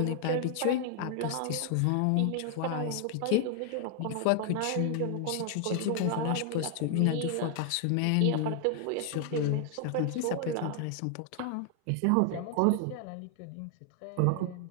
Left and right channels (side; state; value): both; different; correlation 0.00